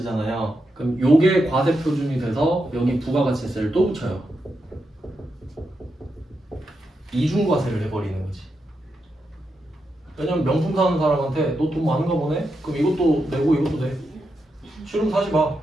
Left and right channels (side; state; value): both; normal; correlation 0.85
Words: 그럼 요게 과세 표준이 돼서 여기 부가가치세를 또 붙여요. 이중과세를 해버리는 거지. 왜냐면 명품 사는 사람한테 너 돈 많은가 보네? 그럼 이것도 내고 이것도 내. 싫으면 사지 마.